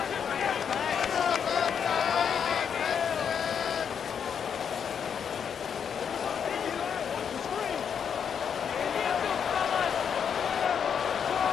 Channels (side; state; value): right; quieter; 7.5 dB